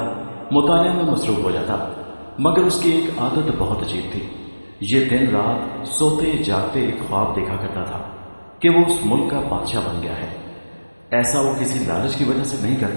مطالعہ میں مصروف ہو جاتا۔ مگر اس کی ایک عادت بہت عجیب تھی۔ یہ دن رات سوتے جاگتے ایک خواب دیکھا کرتا تھا کہ وہ اس ملک کا بادشاہ بن گیا ہے۔ ایسا وہ کسی لالچ کی وجہ سے نہیں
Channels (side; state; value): both; inverted; correlation -1.00